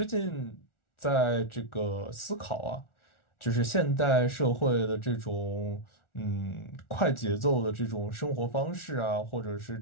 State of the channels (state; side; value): late; right; 1.4 ms